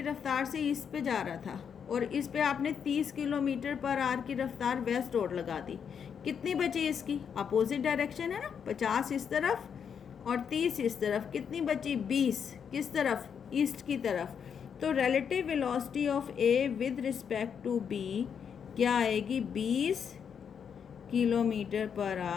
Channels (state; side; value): quieter; right; 7.3 dB